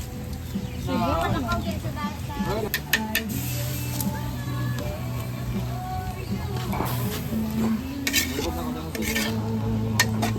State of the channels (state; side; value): identical; both; correlation 1.00